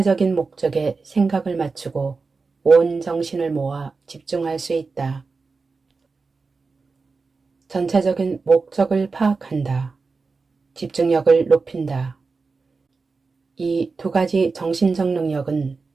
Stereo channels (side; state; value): left; quieter; 4.3 dB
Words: 목적에 생각을 맞추고 온 정신을 모아 집중할 수 있다. 전체적인 목적을 파악한다. 집중력을 높인다. 이 두 가지 정신적 능력은